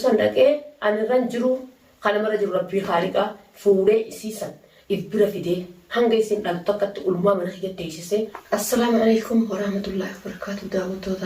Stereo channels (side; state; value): both; identical; correlation 1.00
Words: san dhaqee anirran jiru kana mara jiru rabbii haaliqa fuudhee isiisan ibira fidee hanga isin dhaltu akkatti ulmaa mana kiyyatti teessisee assalaamu alaykum warahmatullahi wabarakatuh